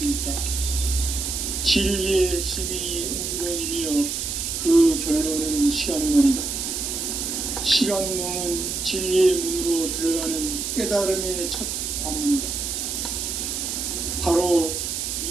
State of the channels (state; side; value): noise; right; hiss, 3 dB below the sound